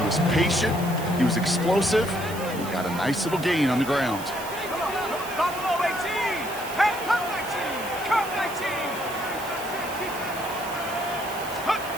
was patient. He was explosive. He got a nice little gain on the ground. Buffalo 18. Hey, come 19. Come 19.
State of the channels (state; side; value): noise; right; hiss, 13 dB below the sound